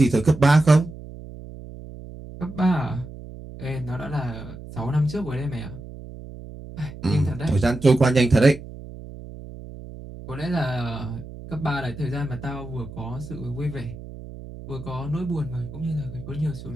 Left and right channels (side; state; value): right; noise; hum, 14 dB below the sound